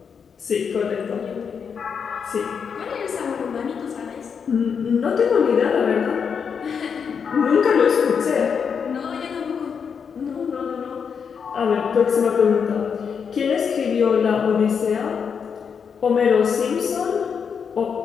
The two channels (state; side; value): quieter; right; 6.6 dB